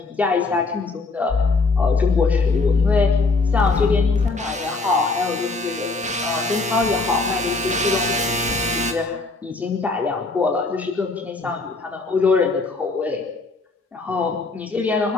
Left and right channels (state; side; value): quieter; right; 3.7 dB